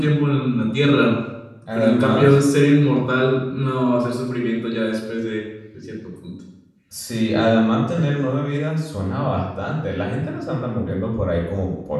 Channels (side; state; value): both; identical; correlation 1.00